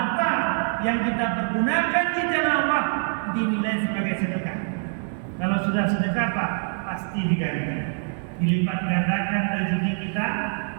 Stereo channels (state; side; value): silent; left; 62 dB below the other